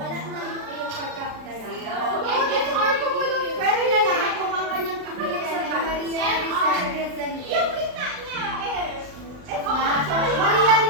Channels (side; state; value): left; late; 39 ms